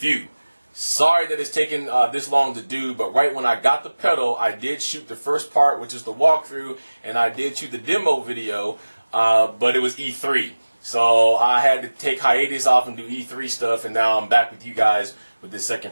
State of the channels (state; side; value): inverted; both; correlation -1.00